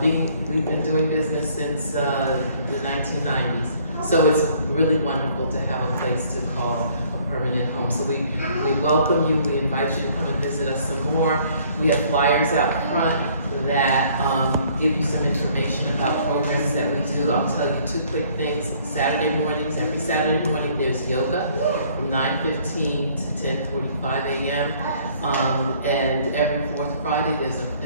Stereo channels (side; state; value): both; inverted; correlation -0.60